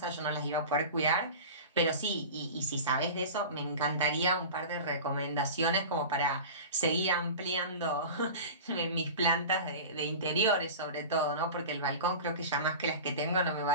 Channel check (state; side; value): inverted; both; correlation -0.33